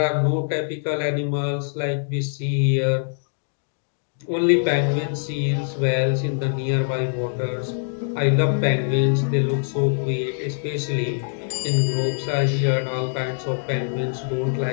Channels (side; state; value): right; silent; digital silence